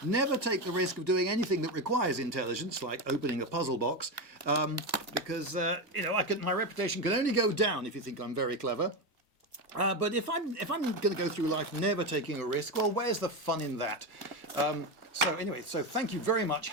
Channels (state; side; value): normal; both; correlation 0.14